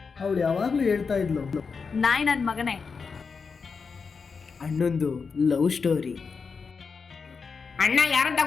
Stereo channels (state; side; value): quieter; right; 5.2 dB